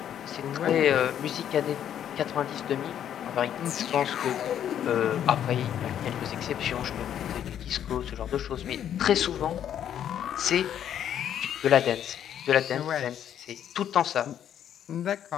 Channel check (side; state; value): right; quieter; 9.9 dB